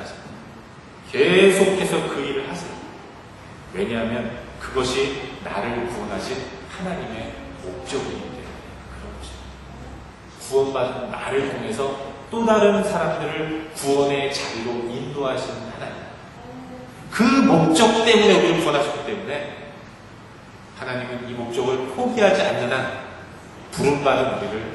계속해서 그 일을 하세요. 왜냐하면 그것이 나를 구원하신 하나님의 목적이기 때문에 그렇죠. 구원받은 나를 통해서 또 다른 사람들을 구원의 자리로 인도하시는 하나님. 그 목적 때문에 우리를 구원하셨기 때문에 하나님은 이 목적을 포기하지 않는 한 부름받은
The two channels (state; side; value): identical; both; correlation 1.00